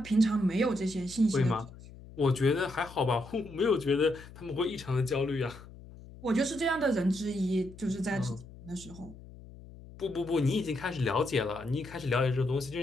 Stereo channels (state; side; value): noise; left; hum, 18 dB below the sound